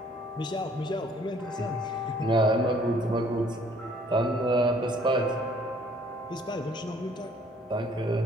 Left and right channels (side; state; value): both; normal; correlation 0.59